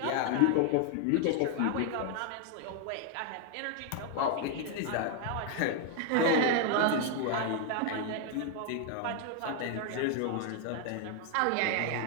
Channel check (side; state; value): both; different; correlation 0.01